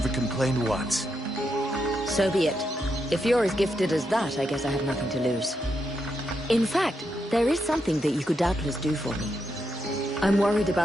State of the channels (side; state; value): both; normal; correlation 0.82